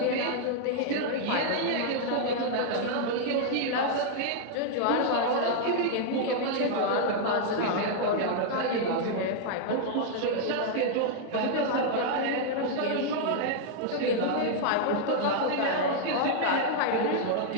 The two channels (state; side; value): different; both; correlation -0.01